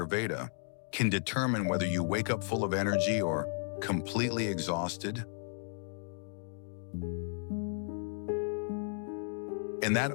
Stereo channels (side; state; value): right; silent; digital silence